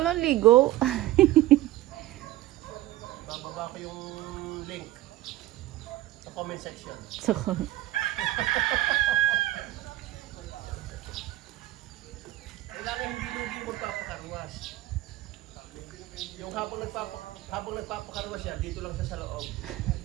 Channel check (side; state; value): left; quieter; 15.9 dB